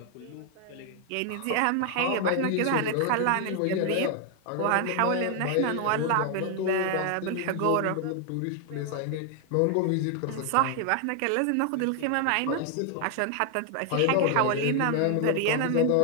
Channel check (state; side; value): different; both; correlation 0.00